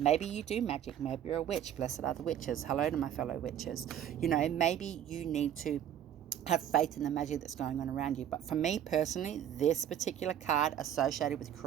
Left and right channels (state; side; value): quieter; left; 10.3 dB